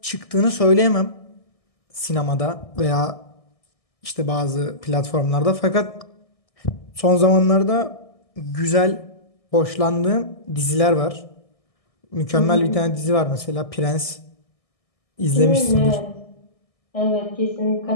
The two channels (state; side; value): late; right; 1.6 ms